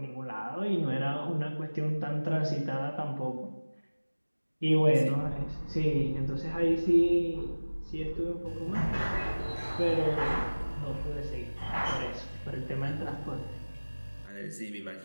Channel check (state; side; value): inverted; both; correlation -1.00